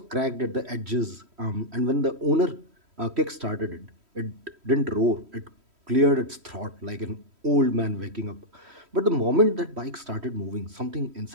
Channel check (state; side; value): late; left; 3.1 ms